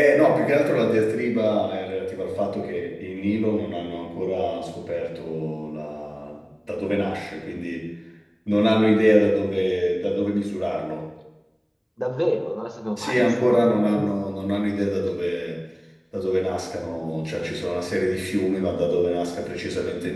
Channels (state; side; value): identical; both; correlation 1.00